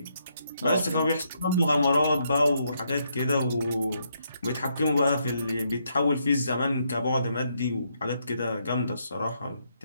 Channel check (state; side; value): inverted; both; correlation -0.76